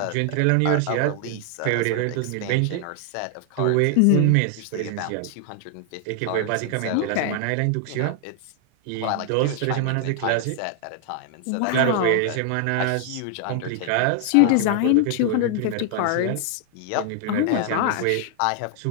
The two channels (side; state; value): both; different; correlation 0.00